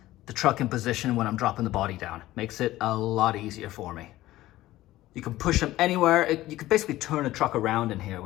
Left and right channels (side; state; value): right; quieter; 16.0 dB